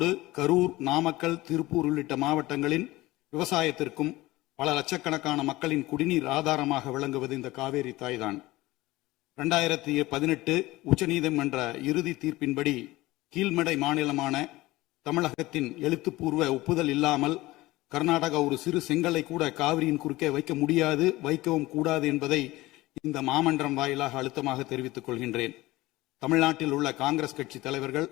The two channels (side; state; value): right; quieter; 18.9 dB